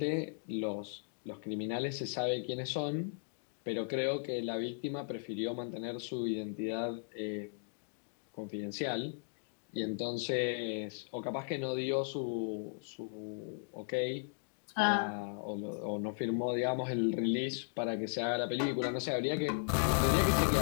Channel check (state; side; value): silent; right; digital silence